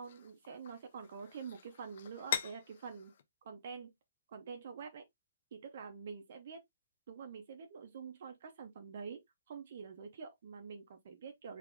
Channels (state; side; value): inverted; both; correlation -0.63